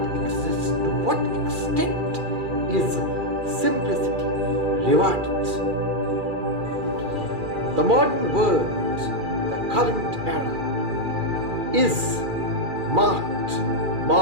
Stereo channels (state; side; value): late; left; 2.4 ms